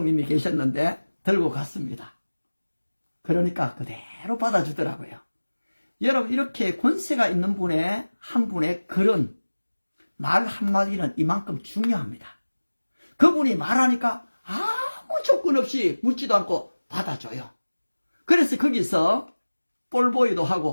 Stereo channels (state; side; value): inverted; both; correlation -1.00